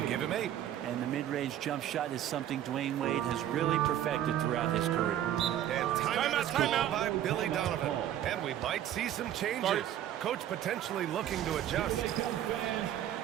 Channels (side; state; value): left; quieter; 11.4 dB